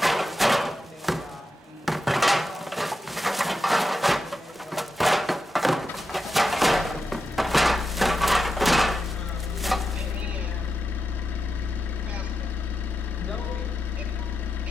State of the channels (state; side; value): normal; both; correlation 0.89